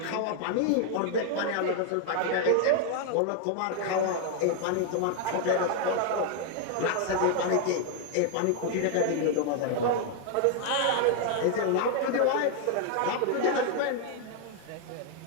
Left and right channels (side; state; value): both; different; correlation 0.00